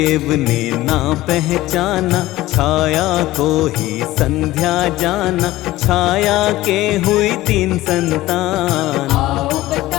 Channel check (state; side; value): quieter; right; 16.9 dB